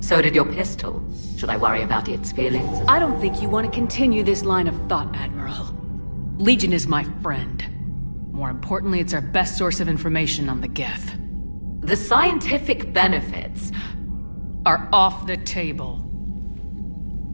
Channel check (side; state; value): both; inverted; correlation -1.00